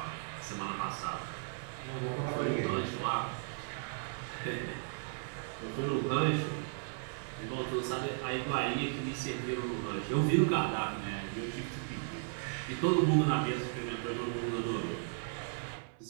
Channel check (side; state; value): left; silent; 54 dB below the other